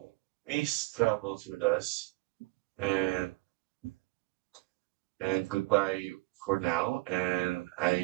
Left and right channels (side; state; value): left; quieter; 22.0 dB